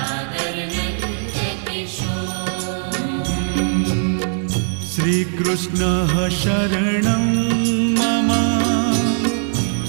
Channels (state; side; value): silent; left; digital silence